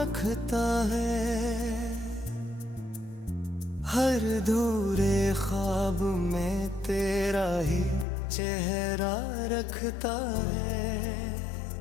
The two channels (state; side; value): drops out; right; at 8.1 s